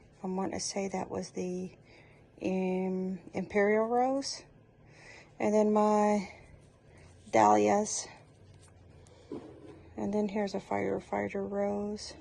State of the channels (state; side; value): identical; both; correlation 1.00